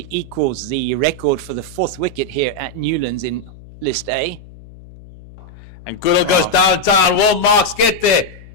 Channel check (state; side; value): noise; left; hum, 20 dB below the sound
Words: equals the record for the 4th wicket here at Newlands in List A. And Goodall goes downtown. Will Marks get there?